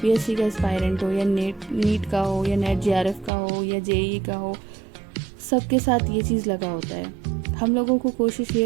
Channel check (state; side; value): drops out; left; at 3.3 s